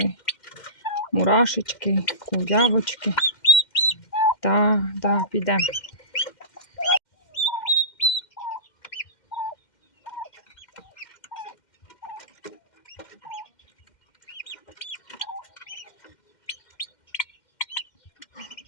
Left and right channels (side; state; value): right; late; 2.1 ms